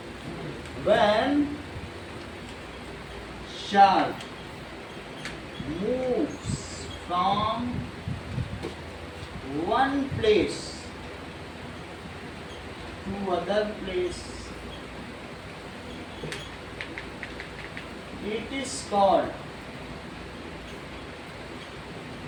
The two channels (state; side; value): identical; both; correlation 1.00